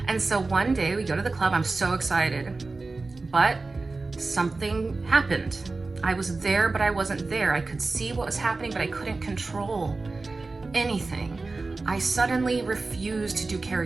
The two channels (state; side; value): quieter; left; 3.6 dB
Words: And so one day we go to the club, I'm so excited, but something happened. I was there, but I wasn't there. I could see what was happening, but I couldn't control anything. I suddenly refused to do